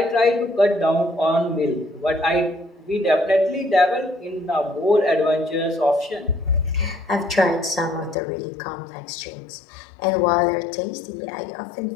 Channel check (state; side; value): drops out; right; at 8.2 s